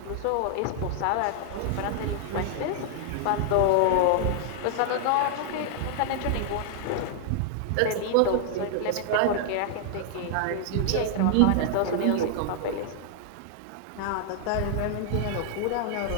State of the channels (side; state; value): both; different; correlation -0.01